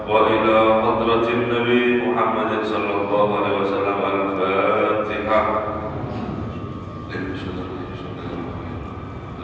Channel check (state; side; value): identical; both; correlation 1.00